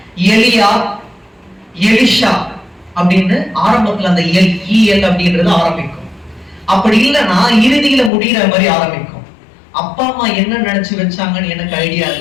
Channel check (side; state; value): right; drops out; at 8.1 s